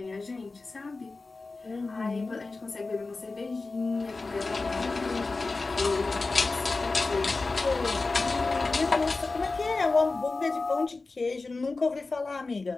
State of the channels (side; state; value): right; quieter; 3.7 dB